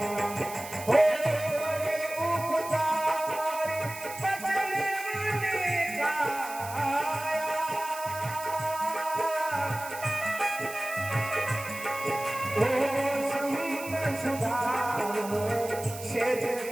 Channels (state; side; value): noise; right; hiss, 13 dB below the sound